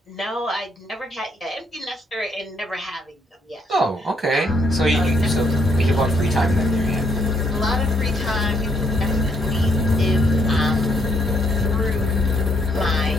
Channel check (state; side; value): normal; both; correlation 0.72